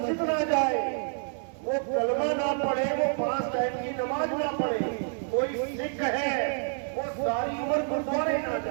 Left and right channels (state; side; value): silent; left; 59 dB below the other